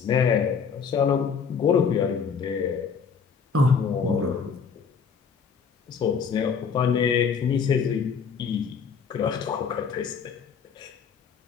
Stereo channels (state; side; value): quieter; right; 6.1 dB